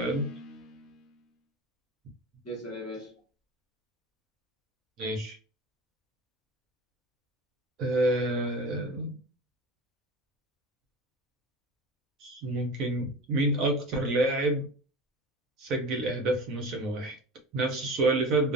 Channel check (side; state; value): both; normal; correlation 0.32